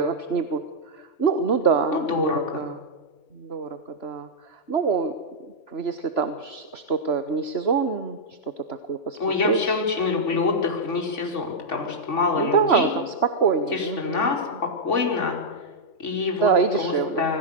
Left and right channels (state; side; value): late; right; 3.5 ms